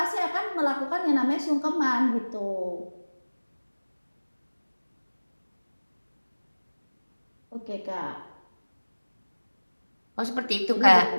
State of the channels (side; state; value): both; inverted; correlation -1.00